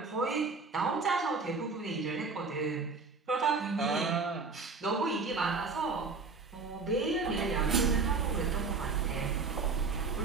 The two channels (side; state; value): left; quieter; 4.4 dB